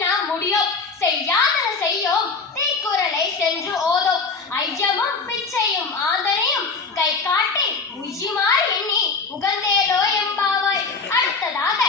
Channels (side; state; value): right; quieter; 4.6 dB